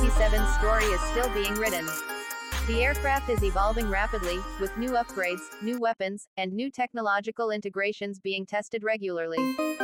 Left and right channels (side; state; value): both; identical; correlation 1.00